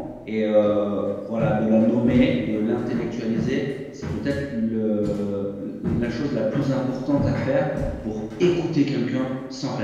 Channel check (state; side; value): identical; both; correlation 1.00